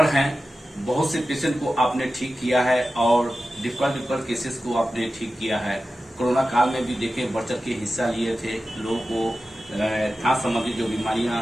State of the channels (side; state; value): both; normal; correlation 0.94